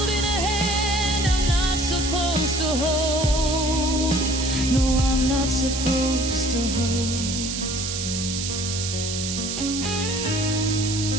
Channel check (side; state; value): right; noise; hiss, 4 dB below the sound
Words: a hand I'm not supposed to hold. No, I'm not supposed to hold.